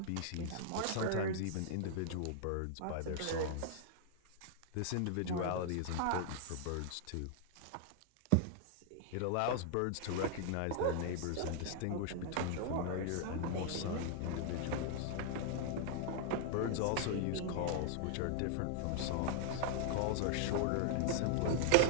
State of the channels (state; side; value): different; both; correlation -0.01